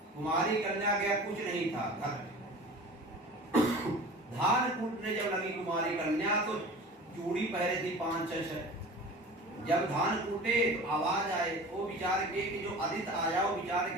कुमारी कन्या के कुछ नहीं था, घर धान कूटने जब लगी कुमारी कन्या तो चूड़ी पहरे थी 5-6। जब धान कूटे तो आवाज आए, वो विचार के कि जो अतिथि आया वो विचार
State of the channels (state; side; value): normal; both; correlation 0.38